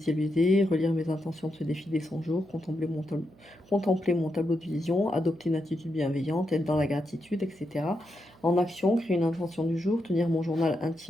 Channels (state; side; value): noise; right; hum, 27 dB below the sound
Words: relire mes intentions de ce défi des 100 jours, contempler mon tableau de vision, adopter une attitude bienveillante, être dans la gratitude, etc. En action, créer une intention du jour, tenir mon journal